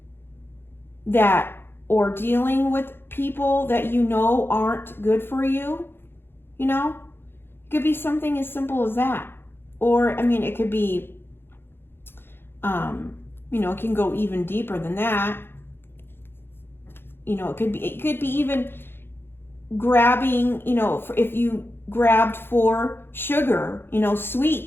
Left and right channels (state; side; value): late; right; 0.10 ms